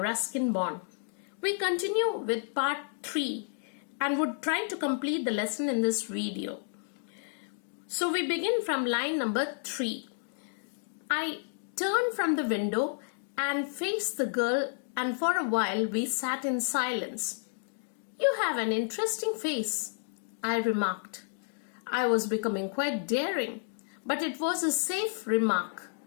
Bond. We continue with part 3 and would try to complete the lesson in this video. So we begin from line number 3. I turned from the window and faced the girl, and for a while we sat in silence. "You have an interesting face," I remarked. I was becoming quite daring, but it was a safe remark.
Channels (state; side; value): silent; right; digital silence